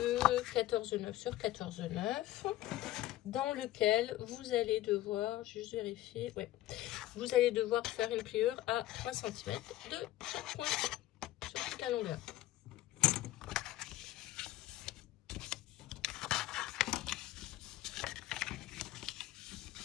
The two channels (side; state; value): right; quieter; 15.3 dB